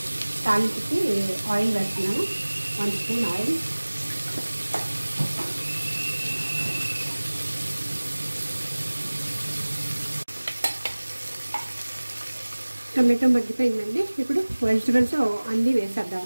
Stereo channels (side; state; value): both; inverted; correlation -1.00